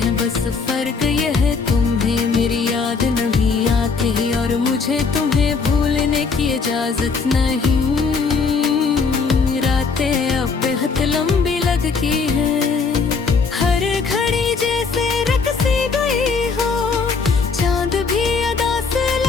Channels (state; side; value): quieter; right; 4.9 dB